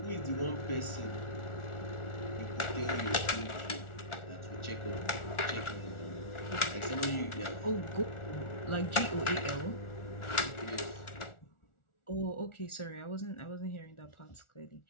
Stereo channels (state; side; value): late; right; 1.4 ms